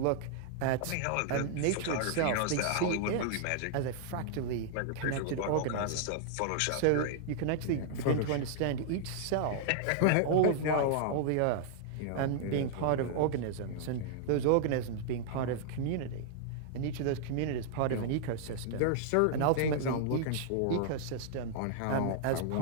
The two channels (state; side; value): different; both; correlation -0.01